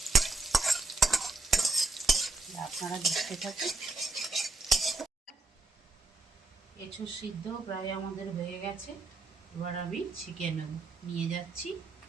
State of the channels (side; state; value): left; quieter; 3.5 dB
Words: আপনারা দেখতে থাকুন। এঁচোড় সিদ্ধ প্রায় আমাদের হয়ে গেছে। এবার আমি ছেঁকে নেব, নিয়ে যাচ্ছি,